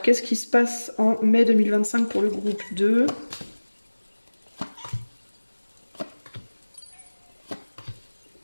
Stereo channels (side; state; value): both; inverted; correlation -1.00